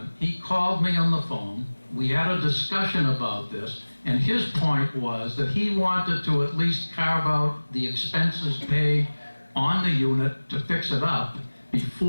he called me on the phone. We had a discussion about this, and his point was that he wanted to at least carve out the expenses paid on the unit to fix it up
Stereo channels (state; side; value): inverted; both; correlation -1.00